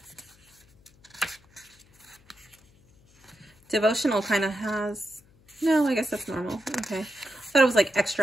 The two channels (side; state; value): left; noise; hum, 29 dB below the sound